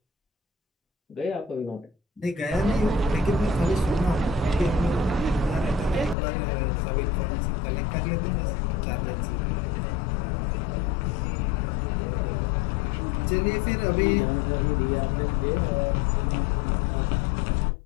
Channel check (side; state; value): right; drops out; at 6.2 s